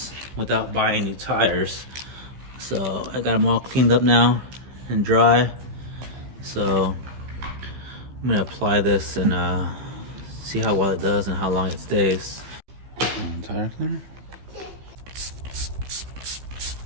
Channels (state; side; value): late; left; 15 ms